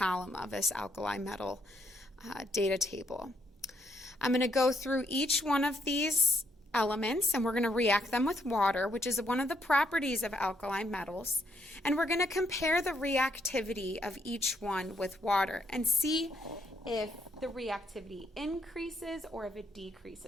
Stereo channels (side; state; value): both; normal; correlation 0.73